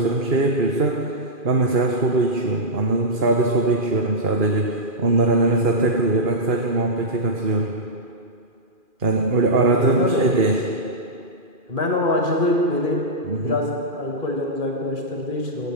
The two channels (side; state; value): left; late; 2.4 ms